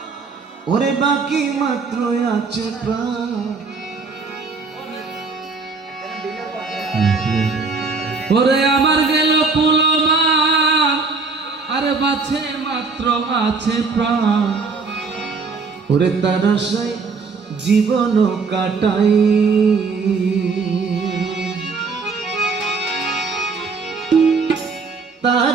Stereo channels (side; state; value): left; quieter; 4.5 dB